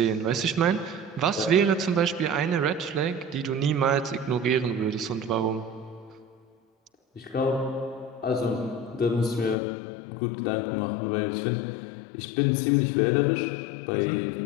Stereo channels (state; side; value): drops out; right; at 9.6 s